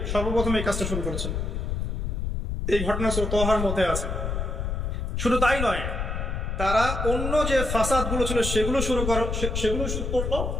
সর্বপ্রথম এই কাজটা শুরু করেছেন। এই ঘটনা তোহার মধ্যে আছে। শুধু তাই নয়, তারা অন্য যে ফাসাদ গুলো ছিল সেগুলো শুরু করলো।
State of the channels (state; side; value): noise; left; rumble, 2 dB below the sound